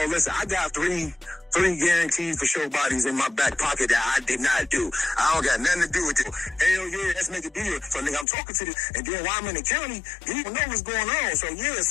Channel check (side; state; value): right; drops out; at 8.2 s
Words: listen, I got three guaranteed for sure bodies in my back pocket that I did not do. I don't got nothing to do with it. Hell yeah, let's make a deal. So nigga, I'm talking to this, and then while I'm in the county, you don't know what's going on. So yeah,